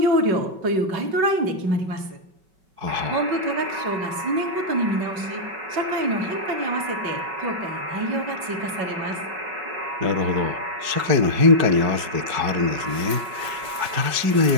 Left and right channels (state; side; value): late; left; 5.3 ms